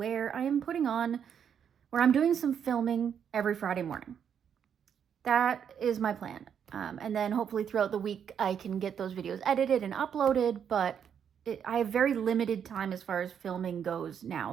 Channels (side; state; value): left; quieter; 8.1 dB